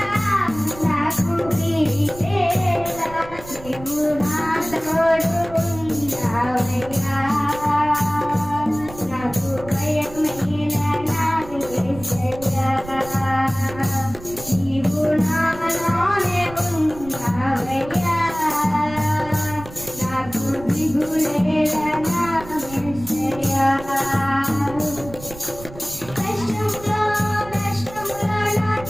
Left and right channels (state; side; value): noise; right; rumble, 16 dB below the sound